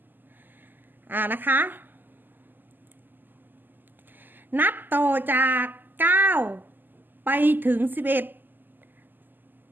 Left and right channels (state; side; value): late; left; 0.089 ms